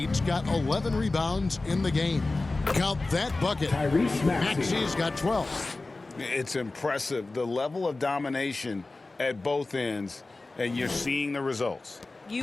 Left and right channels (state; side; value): quieter; right; 3.3 dB